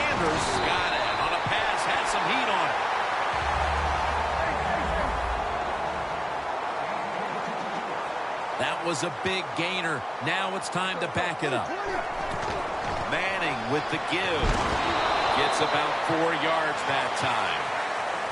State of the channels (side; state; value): both; identical; correlation 1.00